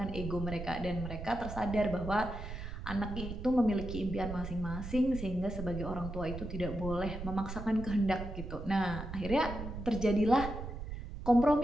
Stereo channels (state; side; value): noise; right; rumble, 8 dB below the sound